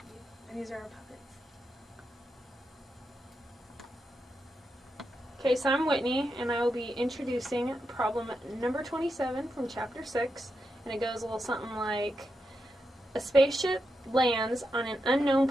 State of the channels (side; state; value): both; normal; correlation 0.86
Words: and these are our puppets. Okay, so I'm Whitney, and I will be introducing problem number 27 from chapter 6, and it goes a little something like, a spaceship lands on an unknown